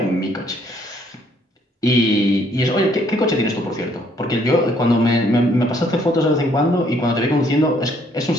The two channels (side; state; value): both; normal; correlation 0.66